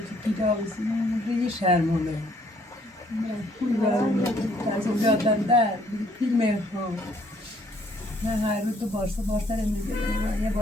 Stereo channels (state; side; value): normal; both; correlation 0.65